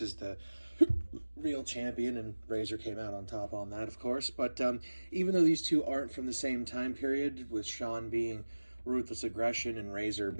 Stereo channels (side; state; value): both; inverted; correlation -1.00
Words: the real champion, and Razor came out on top on that, of course. But even though these two aren't from the same time period, with Shawn being Ruthless Aggression and Razor